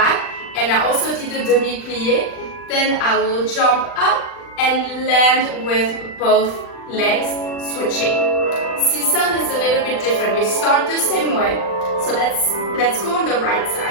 and I also did a demi-plié. Then I will jump up and land with both legs switching. Sissone is a little bit different. You start the same way. So let's go on the right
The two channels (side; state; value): right; late; 39 ms